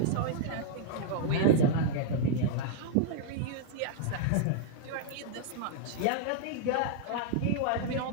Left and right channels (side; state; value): both; different; correlation -0.01